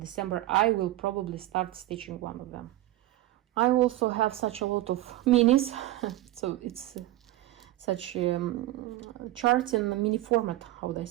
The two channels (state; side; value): quieter; left; 16.2 dB